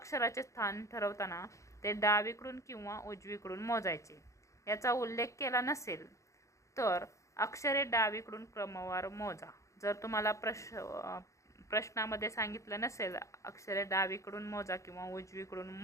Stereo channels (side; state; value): right; late; 0.15 ms